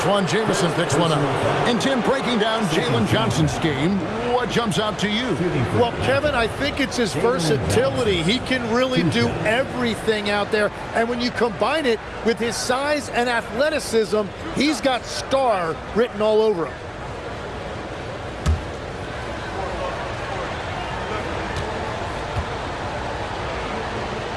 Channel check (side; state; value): both; identical; correlation 1.00